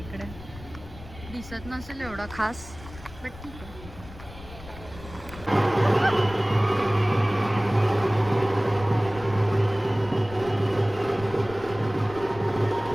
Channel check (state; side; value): noise; left; rumble, 16 dB below the sound